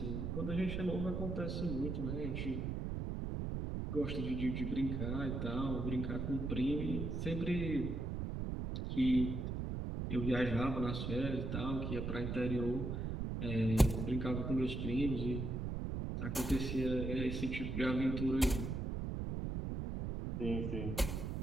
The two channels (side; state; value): right; noise; rumble, 2 dB below the sound